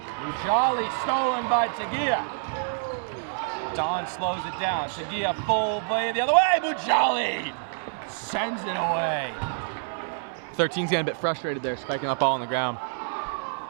Mujali stolen by Tagia. Don slows it down. Tagia full play the other way. Mujali sends it away. 13's getting a bit frustrated there, spiking that ball on the ground.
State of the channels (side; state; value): left; silent; 60 dB below the other